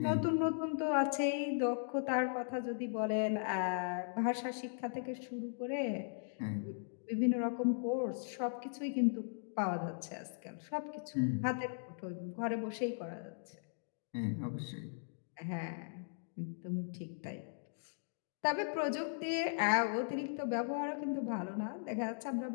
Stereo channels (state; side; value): silent; right; digital silence